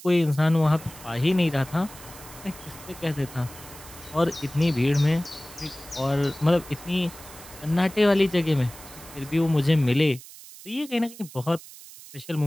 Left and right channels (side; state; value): right; noise; hiss, 17 dB below the sound